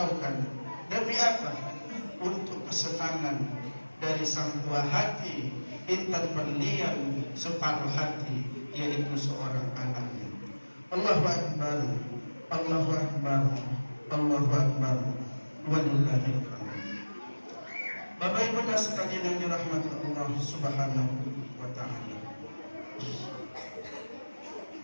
Demi apa? Untuk kesenangan dari sang buah hati, intan berlian separuh hati, yaitu seorang anaknya. Allahu Akbar, Allahu Akbar, Allahu Akbar, walillahil hamd. Bapak Ibu sekalian yang dirahmati Allah Subhanahu wa taala.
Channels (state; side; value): inverted; both; correlation -1.00